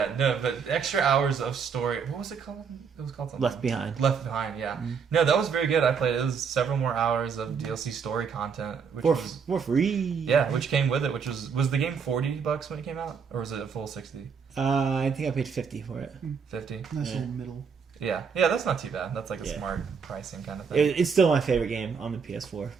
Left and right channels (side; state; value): left; quieter; 6.2 dB